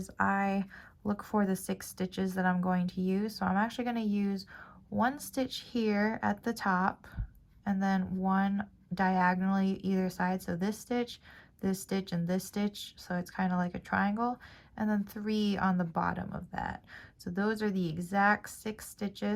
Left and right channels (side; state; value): both; identical; correlation 1.00